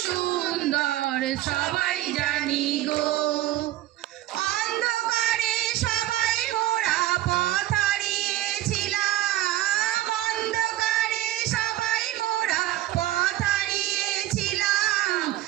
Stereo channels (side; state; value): left; quieter; 14.9 dB